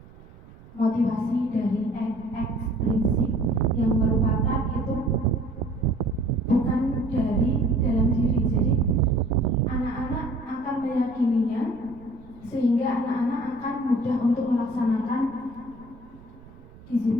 motivasi dari ekstrinsik yang merupakan itu bukan dari dalam diri. Jadi anak-anak akan meyakininya sehingga anak-anak akan mudah untuk melaksanakan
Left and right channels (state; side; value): noise; right; rumble, 22 dB below the sound